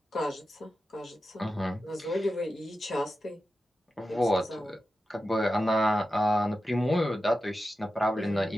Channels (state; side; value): normal; both; correlation 0.91